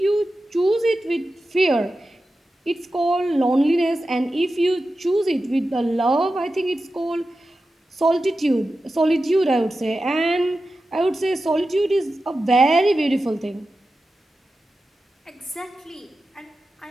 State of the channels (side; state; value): both; normal; correlation 0.92